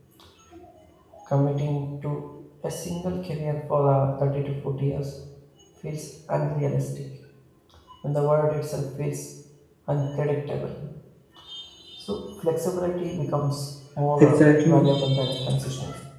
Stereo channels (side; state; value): both; identical; correlation 1.00